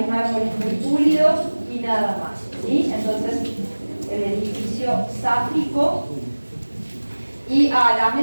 mármoles muy pulidos y nada más, ¿sí? Entonces, el edificio sáfico, y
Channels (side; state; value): both; inverted; correlation -1.00